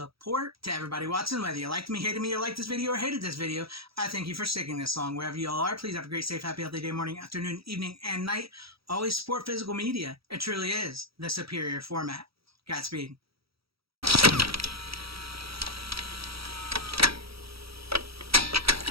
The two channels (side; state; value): left; late; 0.76 ms